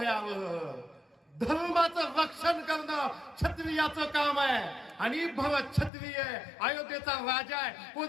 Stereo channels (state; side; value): drops out; right; at 5.9 s